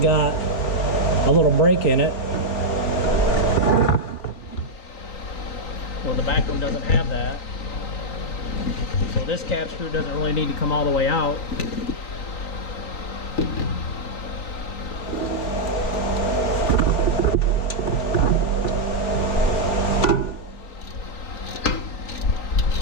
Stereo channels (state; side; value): late; right; 3.9 ms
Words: a little break in it. Well, the back one doesn't have that. So this cap screw doesn't really need to come all the way out.